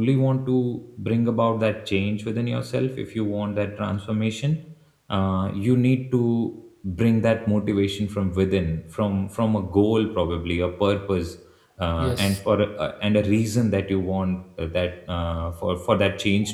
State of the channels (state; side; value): identical; both; correlation 1.00